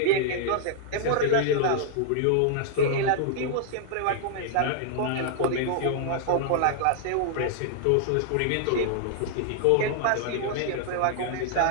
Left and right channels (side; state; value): both; different; correlation -0.01